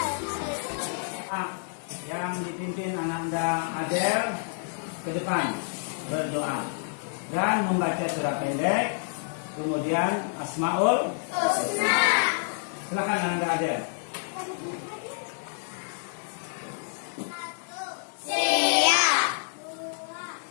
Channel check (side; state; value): right; silent; 56 dB below the other